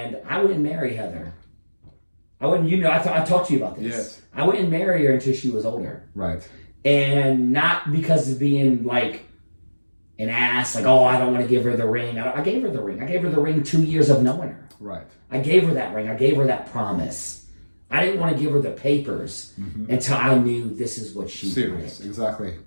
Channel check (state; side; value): inverted; both; correlation -1.00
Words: I wouldn't marry Heather. I wouldn't, I talked to you about this. Yes. I wouldn't marry her until she was older. Right. And not because of being like an ass, like, oh, I don't want to give her the ring. I gave her the ring. I gave her the ring 2 years of knowing her. Right. I gave her that ring. I gave her that promise. I didn't want to give her the papers until I knew this is what she wanted. Exactly.